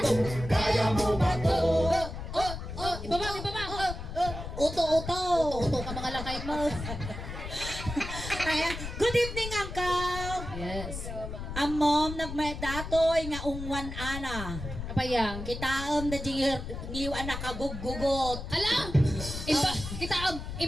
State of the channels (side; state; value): left; noise; rumble, 8 dB below the sound